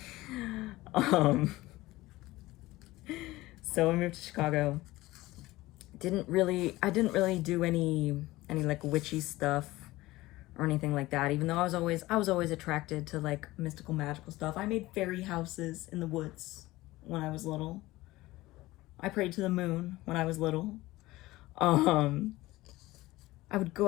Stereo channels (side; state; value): right; quieter; 18.5 dB